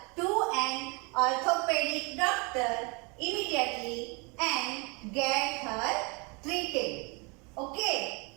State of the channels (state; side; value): quieter; left; 30.3 dB